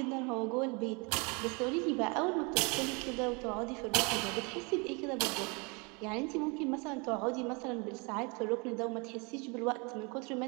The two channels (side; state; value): left; quieter; 30.6 dB